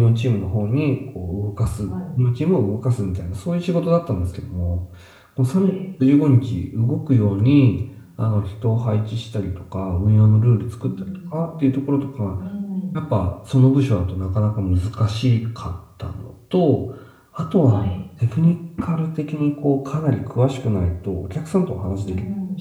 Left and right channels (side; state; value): both; identical; correlation 1.00